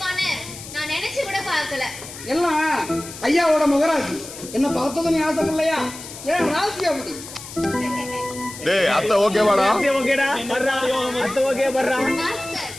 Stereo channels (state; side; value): noise; left; hiss, 13 dB below the sound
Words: நான் நினைச்சு கூட பார்க்கல. எல்லாம் ஐயாவோட முகராசி. என்ன பார்த்ததும் நீ ஆசைப்படலையா? ஏன் ராசி அப்படி? டேய் அத்தை ஓகேவாடா? அத்தை ஓகேடா. வர்றா. அத்தை ஓகே வர்றா. மாஸ்டர்